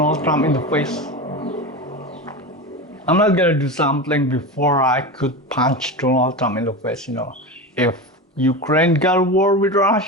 Trump in the face. I'm not gonna do something before I could punch Donald Trump in the face, If Ukraine got a war with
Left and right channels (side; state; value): both; normal; correlation 0.24